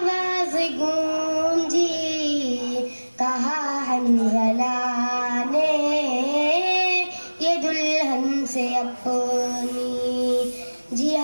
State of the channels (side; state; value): both; inverted; correlation -1.00